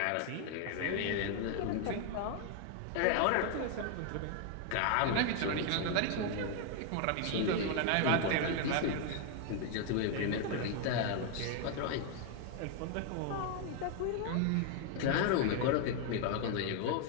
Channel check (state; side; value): different; both; correlation 0.00